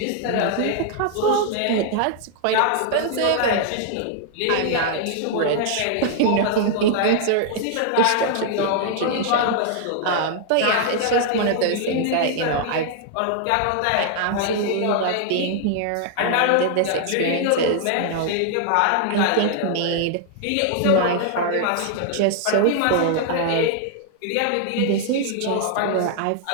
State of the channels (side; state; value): both; different; correlation 0.00